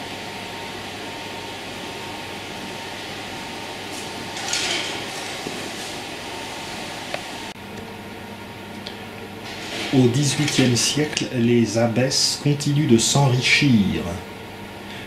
Au XVIIIe siècle, les abbesses continuent de s'enrichir.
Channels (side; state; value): both; identical; correlation 1.00